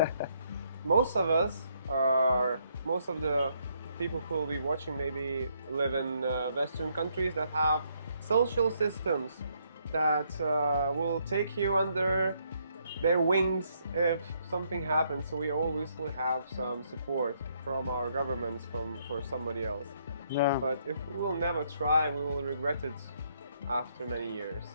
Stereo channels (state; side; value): inverted; both; correlation -0.72